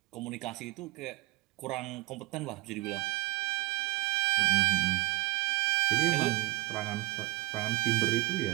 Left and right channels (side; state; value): left; quieter; 20.8 dB